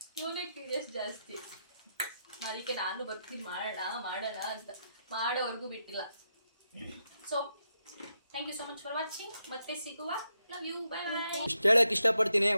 ಇವನೇ ಕ್ಯೂರಿಯಸ್ ಜಾಸ್ತಿ. ಅದಕ್ಕೆ ನಾನು ಬರ್ತೀನಿ ಮಾಡೋಣ ಅಂತ. ಮಾಡೋವರೆಗೂ ಬಿಟ್ಟಿಲ್ಲ. So thank you so much for watching. ಮತ್ತೆ ಸಿಗುವ. Love you. Bye bye. ಹೇಳಕ್ ಇಷ್ಟಪಡ್ತೀನಿ.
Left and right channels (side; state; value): both; inverted; correlation -0.83